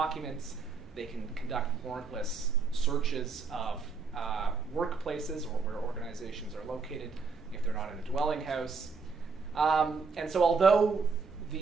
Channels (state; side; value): quieter; left; 4.8 dB